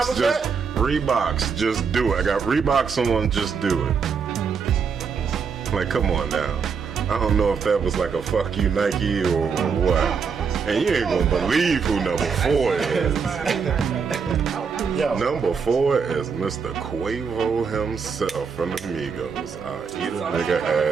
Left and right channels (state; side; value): quieter; left; 5.9 dB